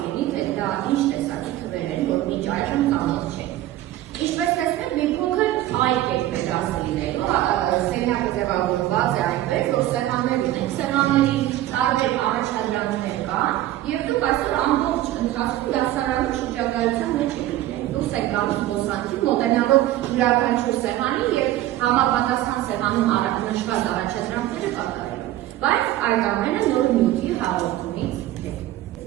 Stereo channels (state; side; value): quieter; left; 14.4 dB